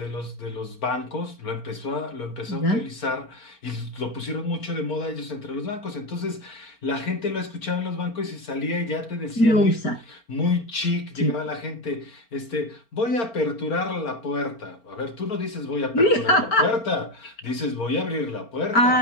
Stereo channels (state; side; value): late; right; 4.4 ms